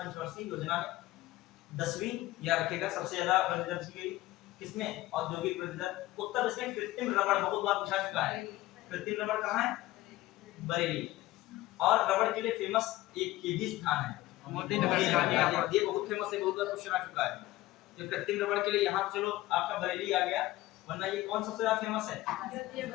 योजना में, 10वीं या रखेगा सबसे ज्यादा वृद्धि दर की गई किसमें, औद्योगिक वृद्धि दर। उत्तर इसमें कृत्रिम रबड़ बहुत बार पूछा चुका है, कृत्रिम रबड़ कहां है, बरेली। और रबड़ के लिए फेमस एक केजी स्थान है, मोदी नगर, ये बहुत फेमस है, बहुत बार क्वेश्चन आ चुका है। तो कृत्रिम रबड़ के लिए यहाँ चलो आपका बरेली आ गया, वरना ये कौन सबसे ज्यादा फेमस है,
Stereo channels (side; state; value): right; quieter; 17.4 dB